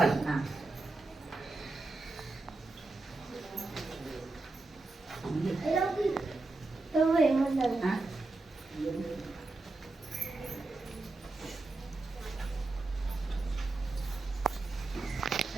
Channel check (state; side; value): quieter; left; 3.3 dB